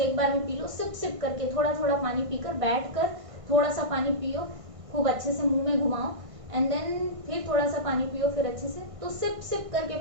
बार में पी लो, सिप सिप करके थोड़ा थोड़ा पानी पीकर बैठ कर थोड़ा सा पानी पियो, खूब अच्छे से मुंह में घुमाओ, एंड देन फिर थोड़ा सा पानी पियो, फिर अच्छे से, तो सिप सिप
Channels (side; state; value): left; late; 1.6 ms